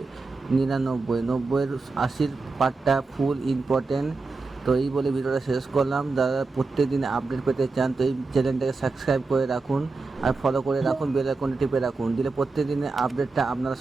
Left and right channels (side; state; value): left; quieter; 3.9 dB